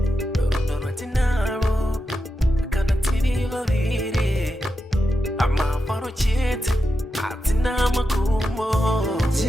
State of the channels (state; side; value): normal; both; correlation 0.89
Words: rudo rwatinaro kana tiri vaviri amafaro chete hatina makumo